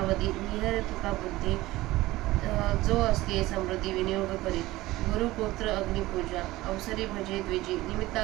निहर तुका बुद्धी जो असते समृद्धी विनियोग करी. गुरुपुत्र अग्निपूजा अवसरी भजे द्विजी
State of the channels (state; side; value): quieter; left; 18.1 dB